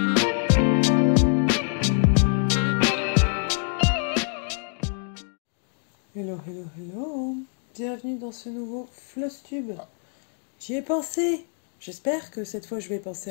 hello, hello. Bienvenue dans ce nouveau Flosstube. J'y ai pensé. J'espère que cette fois je vais penser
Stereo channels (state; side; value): silent; right; 61 dB below the other